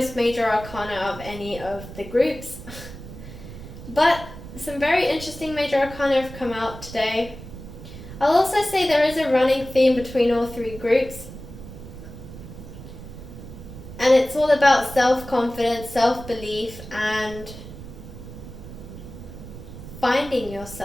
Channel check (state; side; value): noise; right; rumble, 13 dB below the sound